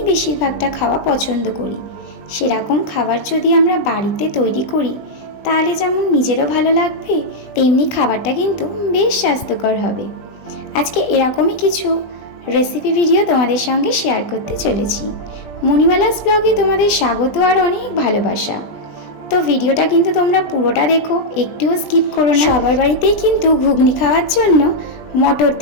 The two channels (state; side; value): late; right; 20 ms